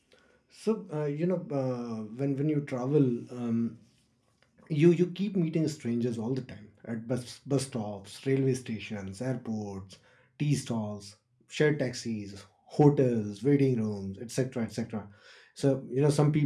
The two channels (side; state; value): both; identical; correlation 1.00